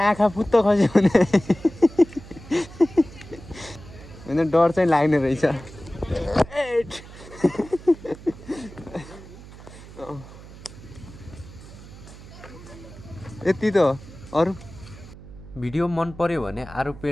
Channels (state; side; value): noise; right; hum, 17 dB below the sound